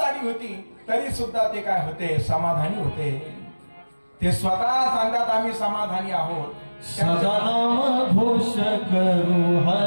होती तरी सुद्धा ते काय होते, समाधानी होते. ते स्वतः सांगतात आम्ही समाधानी आहोत. सदा नाम घोष करू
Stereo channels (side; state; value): both; inverted; correlation -1.00